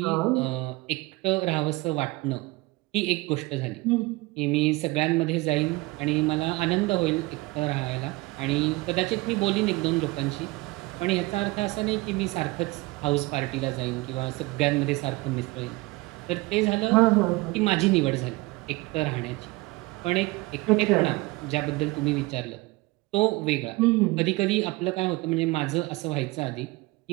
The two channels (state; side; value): quieter; left; 22.2 dB